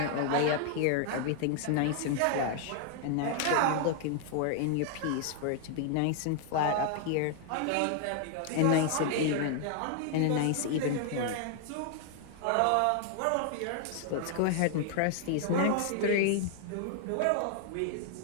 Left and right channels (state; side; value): different; both; correlation 0.00